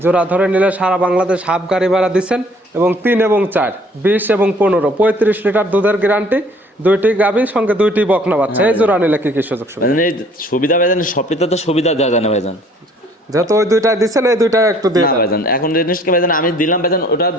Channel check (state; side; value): normal; both; correlation 0.57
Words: জোড়া ধরে নিলে সারা বাংলাদেশ হাফ গাড়ি ভাড়া দিচ্ছেন এবং 3 এবং 4 20 এবং 15 35 লিটার দুধের গ্যারান্টি, 2টি গাভীর সঙ্গে 2টি বকনা বাচ্চা। এই জোড়া নিলে কি কি সুযোগ সুবিধা? ভাইজান এই সুবিধা ভাইজান সবটিতে তো সুবিধা দেওয়া যায় না ভাইজান। যেহেতু ওই 2টা দিচ্ছেন, এই 2টা একটু দিয়ে না দেন। ভাইজান, এখন জিনিসকে ভাইজান আমি দিলাম ভাইজান, ওটা